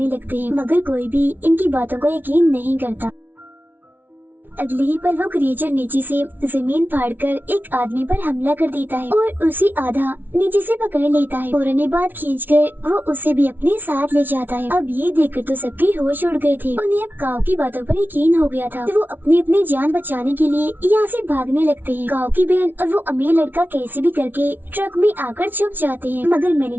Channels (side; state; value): left; late; 0.091 ms